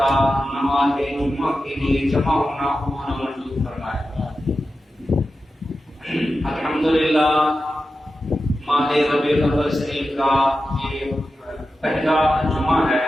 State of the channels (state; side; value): normal; both; correlation 0.92